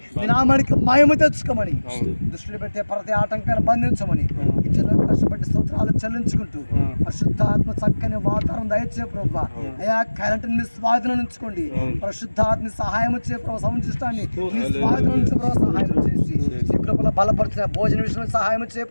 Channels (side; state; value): both; inverted; correlation -1.00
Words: నీ నామానికి మహిమ తెచ్చుకోమని దృష్టిలో పెట్టే ప్రతి ఆటంకాన్ని బంధించమని కష్టపడి స్తోత్రాలు చెల్లించుకుంటూ పరిశుద్ధాత్మ చక్కని వాతావరణం దయచే ప్రభా. అయా కరెంటుని నీ స్వాధీనం ఉంచుకోండి. పరిశుద్ధాత్మ సహాయం వచ్చే ప్రభావ సముచిష్టాన్ని నీ స్వాధీనం నుంచి ప్రభావ సహాయం చేసి నీ కృపలో బలపరిచిన భోజన విషయంలో సహాయం వచ్చే